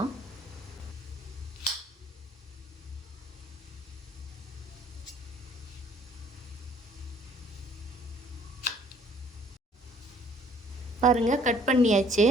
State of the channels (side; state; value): both; normal; correlation 0.58